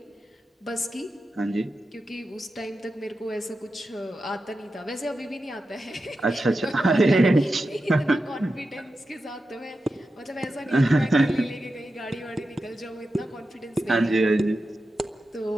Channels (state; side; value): normal; both; correlation 0.91